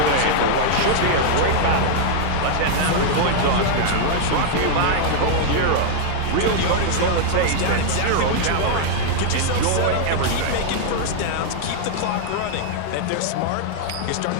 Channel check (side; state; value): both; different; correlation -0.01